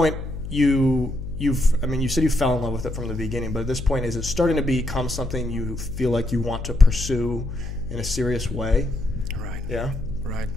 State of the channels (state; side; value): noise; left; hum, 8 dB below the sound